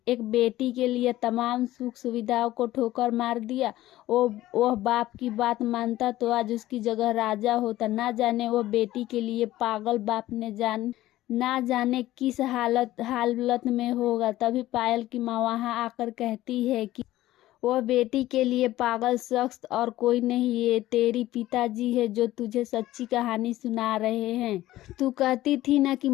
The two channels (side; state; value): right; quieter; 15.4 dB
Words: बेटी के लिए तमाम सुख सुविधाओं को ठोकर मार दिया। वह बाप की बात मानता तो आज उसकी जगह राजा होता। ना जाने वह बेटी के लिए पागल बाप ने ना जाने किस हालत में होगा। तभी पायल की माँ वहां आकर कहती है कि वह बेटी के लिए पागल शख्स और कोई नहीं, ये तेरी पिताजी है जो तुझे सच्ची कहानी सुना रहे हैं। तू कहती थी ना कि